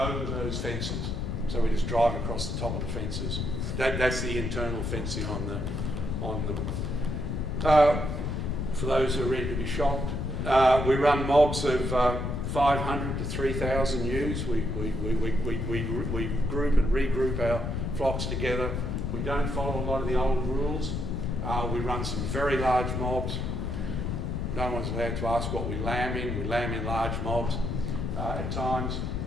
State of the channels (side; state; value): left; noise; rumble, 2 dB below the sound